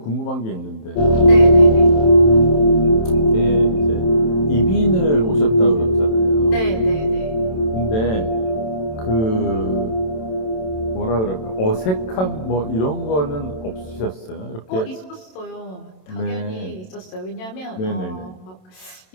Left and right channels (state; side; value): late; right; 27 ms